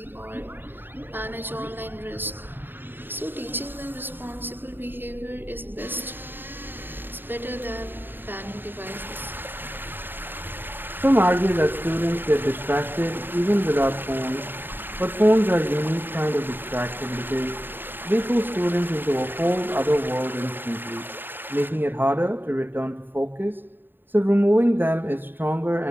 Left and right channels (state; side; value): late; left; 0.095 ms